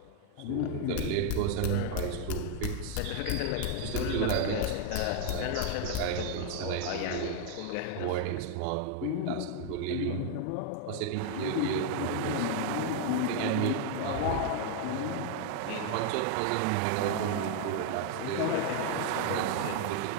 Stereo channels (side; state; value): both; different; correlation 0.00